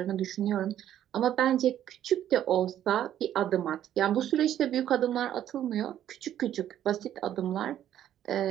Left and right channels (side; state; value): left; quieter; 11.2 dB